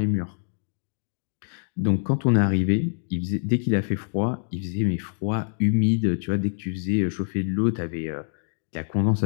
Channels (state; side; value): silent; right; digital silence